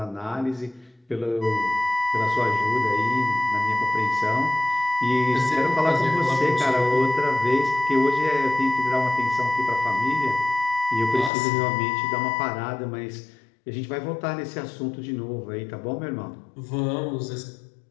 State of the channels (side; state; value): right; drops out; at 11.3 s